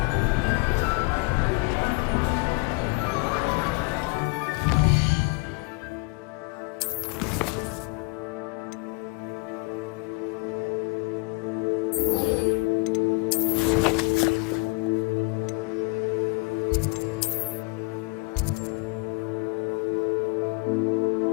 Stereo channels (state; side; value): quieter; right; 28.8 dB